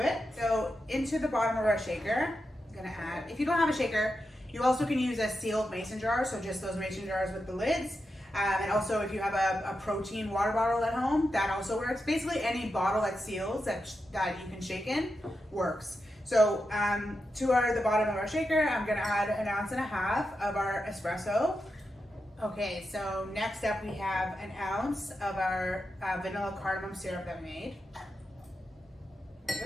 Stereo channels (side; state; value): both; normal; correlation 0.88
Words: it. So into the bottom of our shaker, I'm gonna add, if you don't have a shaker, you also can use a sealed mason jar. So just those mason jars with the lids. And also if you have a protein water bottle at home, that also works. Basically any bottle that seals that you can shake in works. So to the bottom of our shaker, I'm gonna add 1.5 ounces of our espresso. Okay, so next up we have 1 ounce of our vanilla cardamom syrup that we made. There